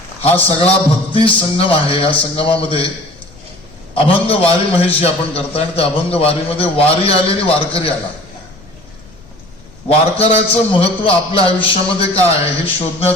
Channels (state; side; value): noise; left; rumble, 24 dB below the sound